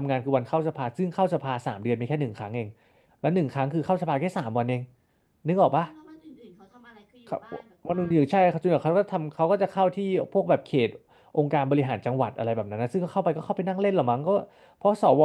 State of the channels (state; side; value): identical; both; correlation 1.00